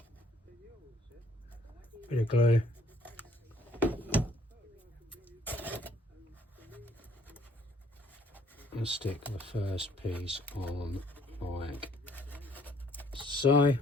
Bit of glue. And stick the first piece on like so.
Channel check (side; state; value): both; normal; correlation 0.62